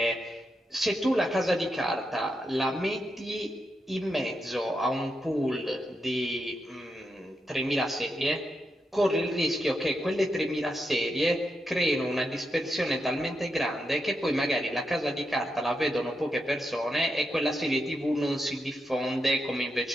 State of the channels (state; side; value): normal; both; correlation 0.85